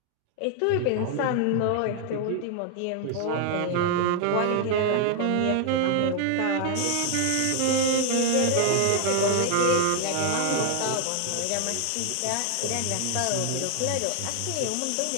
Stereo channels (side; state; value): both; different; correlation 0.00